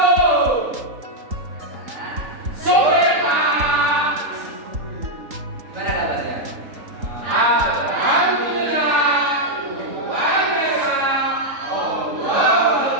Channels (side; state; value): left; late; 3.8 ms